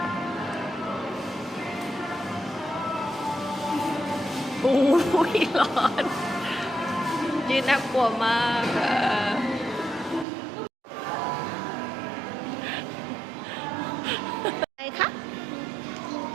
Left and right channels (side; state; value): left; drops out; at 10.2 s